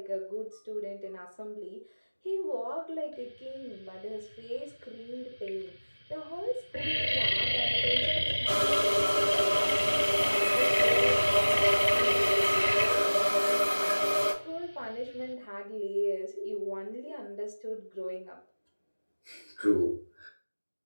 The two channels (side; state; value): both; inverted; correlation -1.00